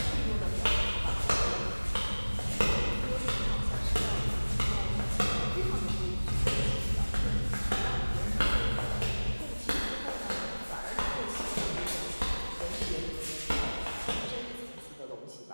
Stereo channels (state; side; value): inverted; both; correlation -1.00